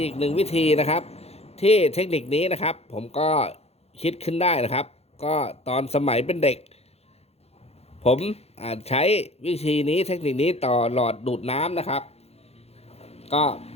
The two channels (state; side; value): late; right; 0.30 ms